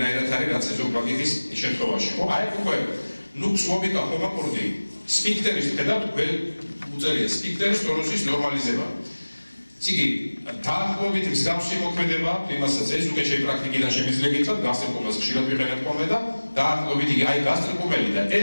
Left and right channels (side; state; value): both; inverted; correlation -1.00